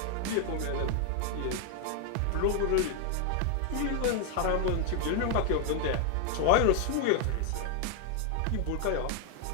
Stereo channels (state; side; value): different; both; correlation 0.00